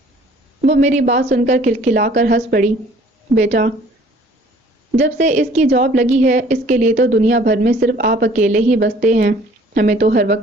وہ میری بات سن کر کھلکھلا کر ہنس پڑی۔ بیٹا، جب سے اس کی جاب لگی ہے، اس کے لیے تو دنیا بھر میں صرف آپ اکیلے ہی بستے ہیں۔ ہمیں تو ہر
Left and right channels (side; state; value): both; normal; correlation 0.55